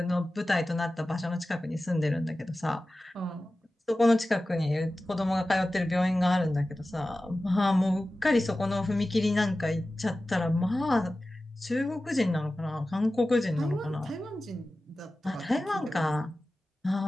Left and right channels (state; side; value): normal; both; correlation 0.95